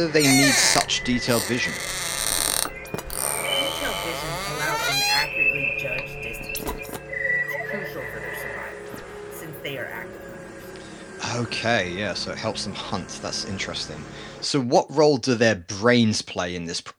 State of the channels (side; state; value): both; identical; correlation 1.00